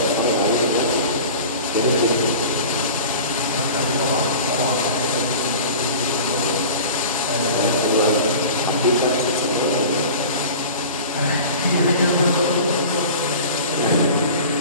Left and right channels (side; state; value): both; inverted; correlation -0.38